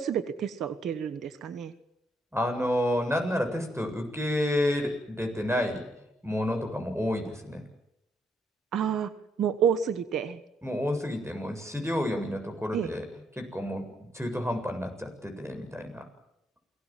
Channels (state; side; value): normal; both; correlation 0.74